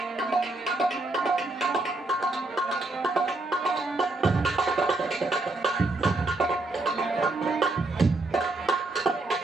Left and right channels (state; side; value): quieter; left; 3.0 dB